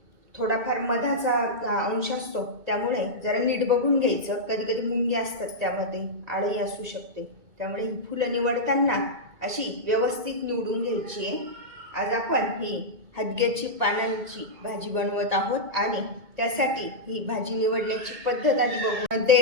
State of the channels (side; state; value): left; late; 1.9 ms